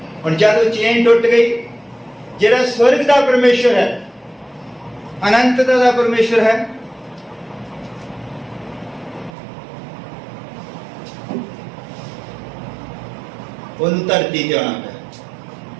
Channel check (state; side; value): drops out; left; at 9.3 s